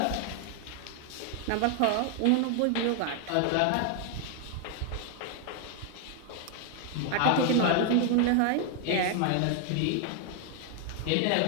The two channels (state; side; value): different; both; correlation 0.00